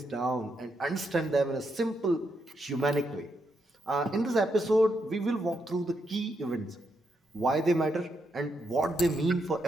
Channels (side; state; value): both; normal; correlation 0.80